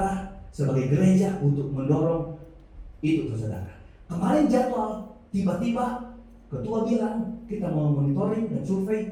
sebagai gereja untuk mendorong itu saudara. Kemarin jadwal, tiba-tiba ketua bilang kita mau monitoring dan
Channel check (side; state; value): both; identical; correlation 1.00